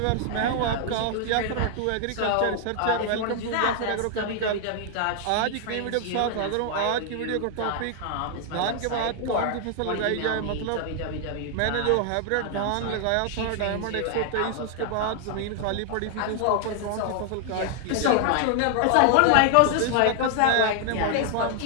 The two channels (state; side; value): different; both; correlation 0.00